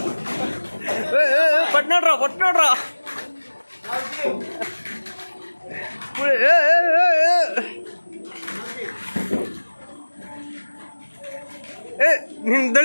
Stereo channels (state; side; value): inverted; both; correlation -1.00